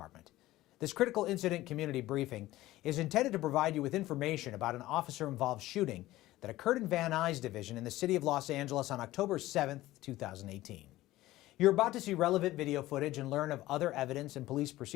This critical incident community briefing is intended to provide you with information about an officer-involved shooting that occurred in Van Nuys Division in the city of Los Angeles on October 7, 2018. You're about to see relevant video footage and learn of other evidence and police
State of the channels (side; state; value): right; quieter; 16.5 dB